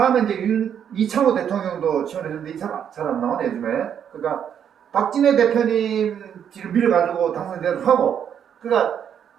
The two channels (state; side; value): quieter; left; 8.6 dB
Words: 이제 이창호 대통령도 지원해줬는데 이 사람 잘 안 나오네 요즘에. 그러니까 박진애 대표님 뒤를 밀어가지고 당선되도 하고, 그러니까